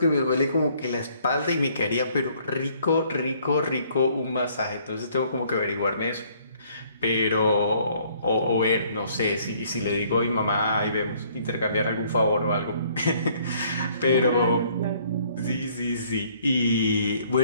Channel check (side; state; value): both; inverted; correlation -0.62